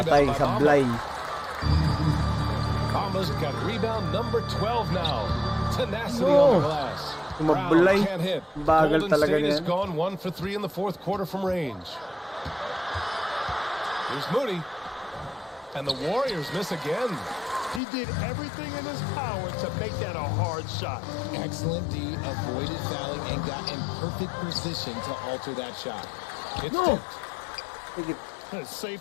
rebound by sablay. Bamba's got rebound number 12 now. Tenacity on the glass. Mablay. Brown can't hit. Bagal Golden talaga State has niyan. gone 1 for 3 in the 4th quarter from range. Here's Moody. And the Warriors miss again. He did everything in his power to make that a hard shot. Excellent D, avoided fouling, and got in perfect position to alter that shot. It's It's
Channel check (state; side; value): drops out; right; at 17.8 s